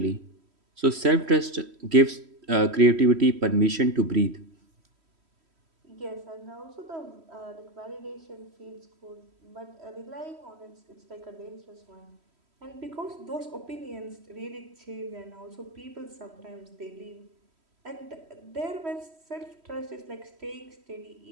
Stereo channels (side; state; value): left; late; 3.1 ms